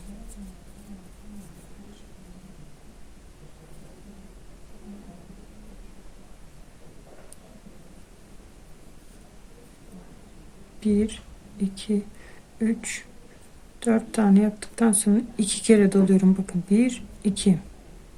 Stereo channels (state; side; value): identical; both; correlation 1.00